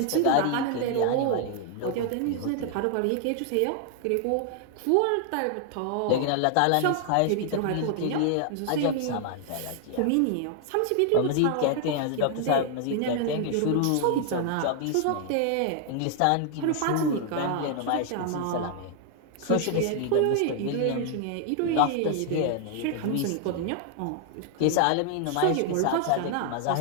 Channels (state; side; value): different; both; correlation 0.00